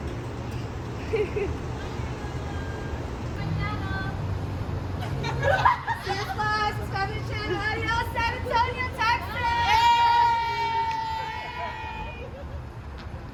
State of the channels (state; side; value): identical; both; correlation 1.00